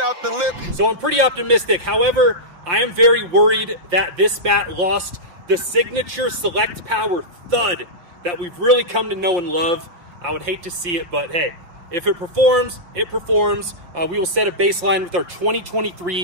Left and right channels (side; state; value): left; late; 5.8 ms